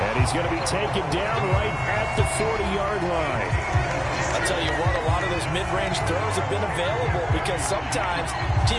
And he's going to be taken down right at the 40-yard line. I'll tell you what, a lot of those mid-range throws have been available because sometimes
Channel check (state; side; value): identical; both; correlation 1.00